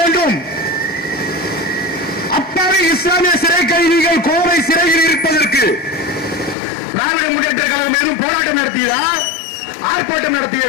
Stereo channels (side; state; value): right; drops out; at 6.6 s